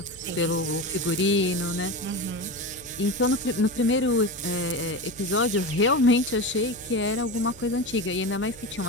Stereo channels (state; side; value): noise; left; hum, 24 dB below the sound